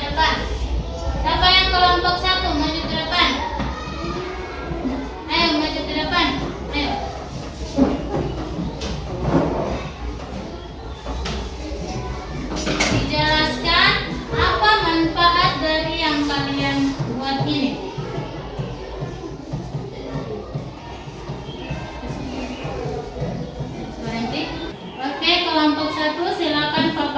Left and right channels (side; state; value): both; identical; correlation 1.00